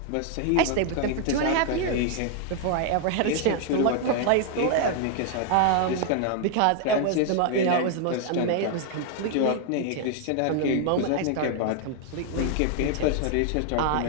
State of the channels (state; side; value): different; both; correlation 0.00